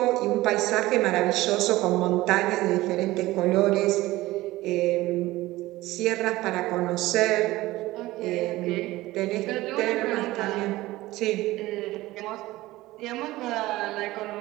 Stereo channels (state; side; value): quieter; left; 18.0 dB